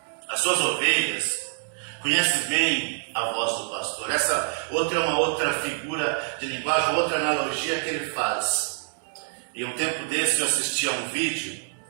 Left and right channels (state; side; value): silent; left; digital silence